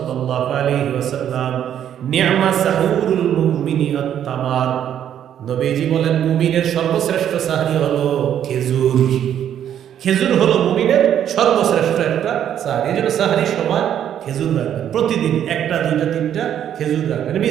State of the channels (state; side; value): quieter; left; 10.0 dB